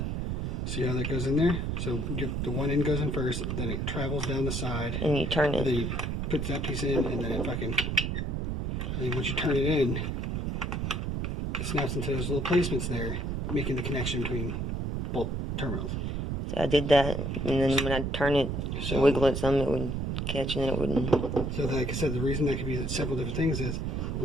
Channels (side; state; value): right; noise; rumble, 1 dB below the sound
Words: see how that goes in there? So the one end goes in first, then it travels down the side, And you turn and it. then you put that piece in, and then it fucking, and then once you turn it in, it snaps into those little placements there, making the connection between both terminals. So I did that, and then when I turn it, So- wiggle it some, it would catch, and then it wouldn't. So like I said, the reason that could be several different things is,